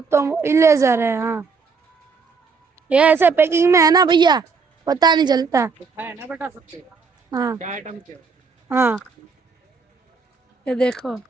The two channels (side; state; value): left; quieter; 5.0 dB